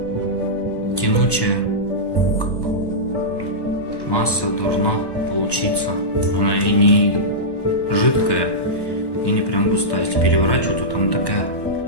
тянучая масса должна получиться. Она и не жидкая, и не прям густая. Если переворачивать, то там такая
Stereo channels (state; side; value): late; right; 1.1 ms